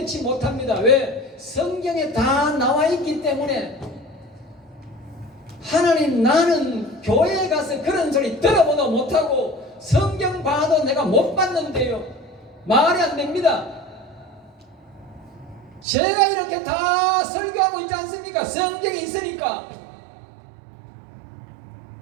못합니다. 왜? 성경에 다 나와 있기 때문에. 하나님, 나는 교회에 가서 그런 소리 들어보도 못하고 성경 봐도 내가 못 봤는데요. 말이 안 됩니다. 제가 이렇게 다 설교하고 있지 않습니까? 성경이 있으니까.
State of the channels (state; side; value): drops out; left; at 15.9 s